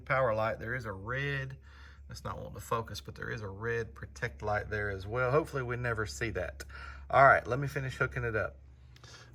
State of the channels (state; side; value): identical; both; correlation 1.00